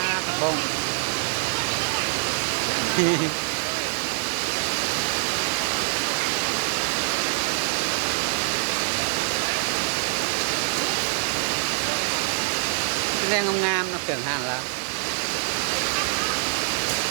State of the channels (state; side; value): silent; left; digital silence